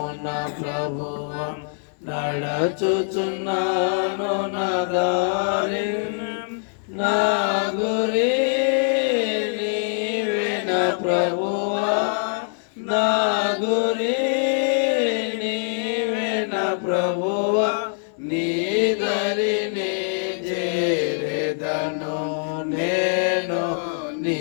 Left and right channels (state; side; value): silent; right; 63 dB below the other